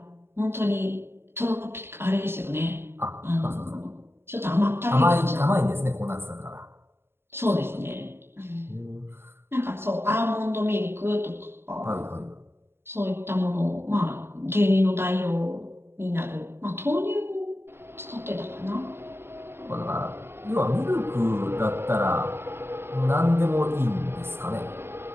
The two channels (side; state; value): left; late; 0.11 ms